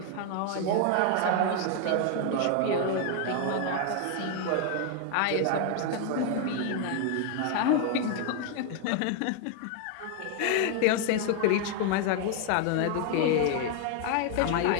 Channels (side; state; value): both; different; correlation 0.00